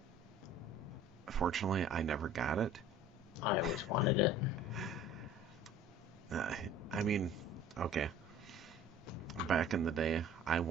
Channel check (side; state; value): both; normal; correlation 0.47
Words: fortunately, I never got it. I always wanted it. I mean, okay. Back in the day, I